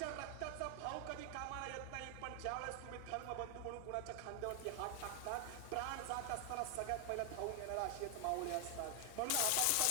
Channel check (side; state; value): both; different; correlation 0.00